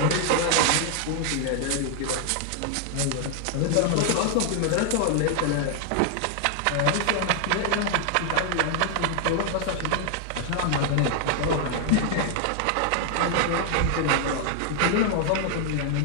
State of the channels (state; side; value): different; both; correlation 0.00